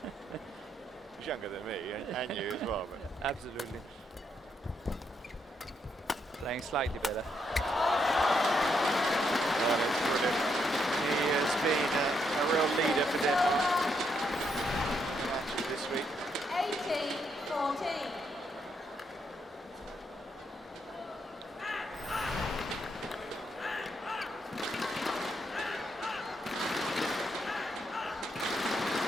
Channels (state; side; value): normal; both; correlation 0.77